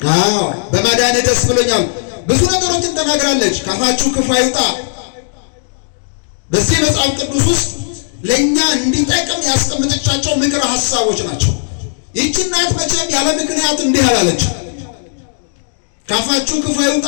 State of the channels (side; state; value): right; silent; digital silence